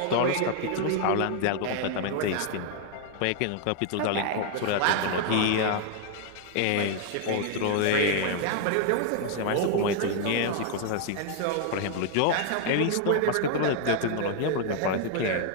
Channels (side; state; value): both; different; correlation 0.00